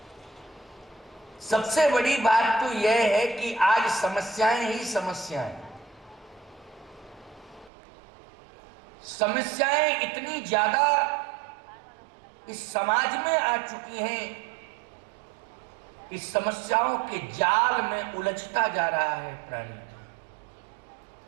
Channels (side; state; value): left; drops out; at 7.7 s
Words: सबसे बड़ी बात तो यह है कि आज समस्याएं ही समस्याएं, समस्याएं इतनी ज्यादा इस समाज में आ चुकी हैं, इस समस्याओं के जाल में उलझता जा रहा है प्राणी।